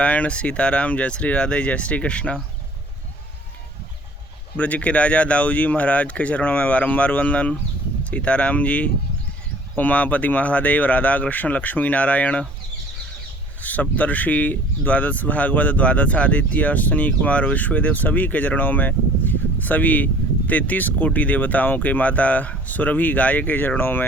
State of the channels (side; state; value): both; normal; correlation 0.51